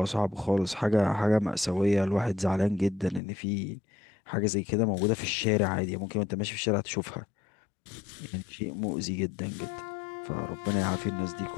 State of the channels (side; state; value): right; drops out; at 3.2 s